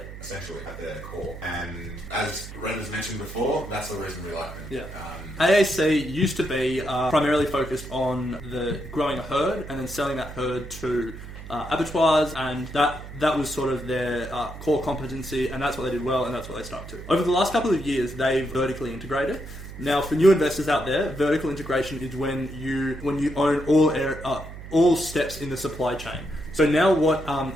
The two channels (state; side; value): noise; right; hum, 13 dB below the sound